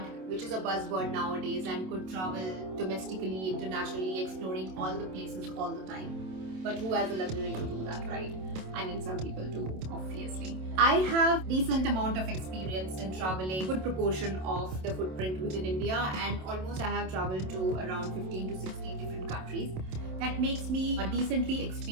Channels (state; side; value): late; left; 27 ms